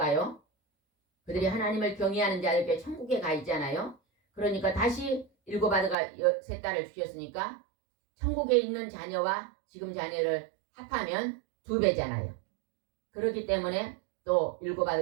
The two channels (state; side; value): drops out; left; at 6.0 s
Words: 그들이 하나님을 경외하는 자들께 천국에 가 있잖아요. 그러니까 다시 7 아들과 3 딸을 주셨으니까 천국에 있는 자녀와 지금 자녀를 합하면 2배잖아요. 그렇기 때문에 또 7